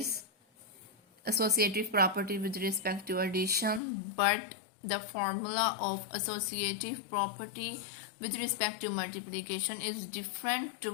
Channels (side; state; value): right; drops out; at 3.8 s